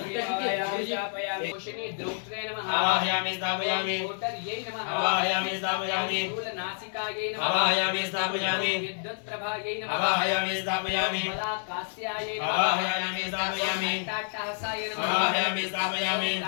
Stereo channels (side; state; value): right; silent; digital silence